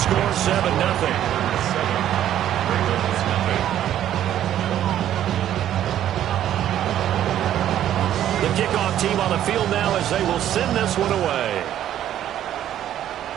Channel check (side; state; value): left; quieter; 11.4 dB